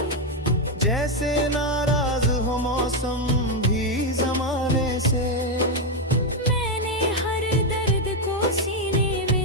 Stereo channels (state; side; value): normal; both; correlation 0.04